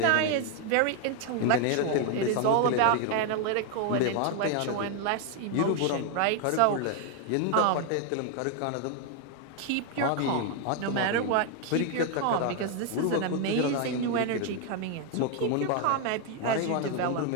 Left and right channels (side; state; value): both; different; correlation 0.00